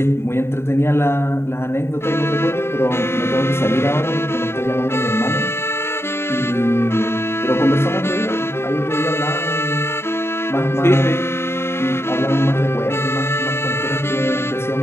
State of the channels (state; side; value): late; right; 0.12 ms